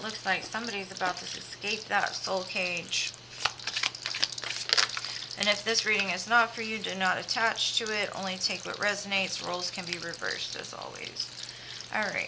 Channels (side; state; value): both; identical; correlation 1.00